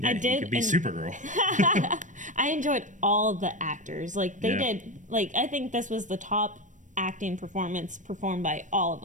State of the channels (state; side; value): late; left; 0.37 ms